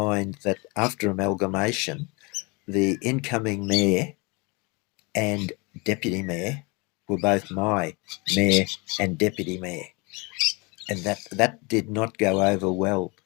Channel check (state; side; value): quieter; right; 28.4 dB